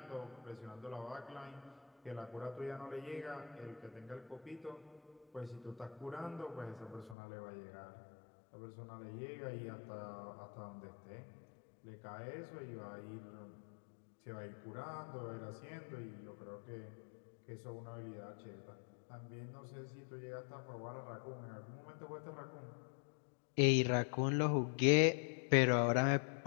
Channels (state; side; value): drops out; right; at 7.2 s